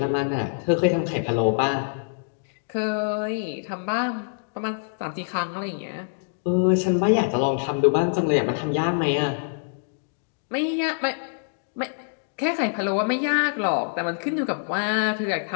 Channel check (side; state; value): right; silent; digital silence